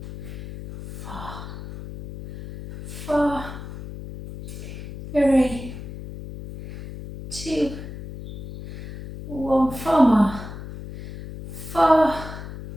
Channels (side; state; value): left; noise; hum, 11 dB below the sound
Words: 4, 4, 3, 2, 1. 4 more. 4,